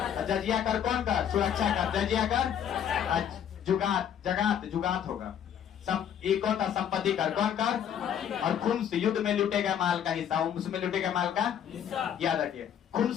जजिया कर कौन कर? सुरक्षा कर। जजिया कर जुगात होगा। एक कौन था? संपत्ति कर। कौन कर? और खुम्स युद्ध में लूटे गए माल का हिस्सा। उसमें लूटे गए माल का याद रखिए।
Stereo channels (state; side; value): quieter; right; 9.1 dB